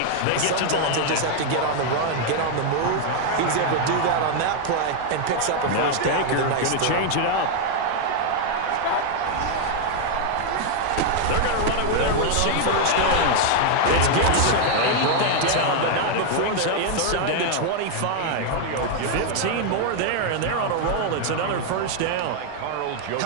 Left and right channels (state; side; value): different; both; correlation 0.00